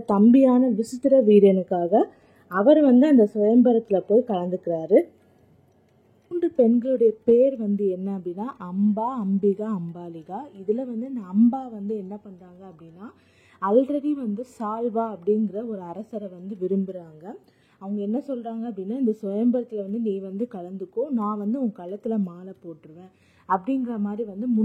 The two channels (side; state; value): both; identical; correlation 1.00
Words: தம்பியான விசித்திர வீரனுக்காக அவர் அந்த சுயம்பரத்துல போய் கலந்துக்கிறாரு. 3 பெண்களுடைய பேர் என்ன அப்படின்னா அம்பா, அம்பிகா, அம்பாலிகா. இதுல இந்த அம்பா என்ன பண்றாங்க அப்படின்னா ஆல்ரெடி சால்வா அப்படிங்கிற ஒரு அரசரை விரும்புறாங்க. அவங்க என்ன சொல்றாங்க அப்படின்னா இந்த சுயம்பரத்துல நீ கலந்துக்கோ, நான் உன் கழுத்துல மாலை போட்டுருவேன் அப்படிங்கிற மாதிரி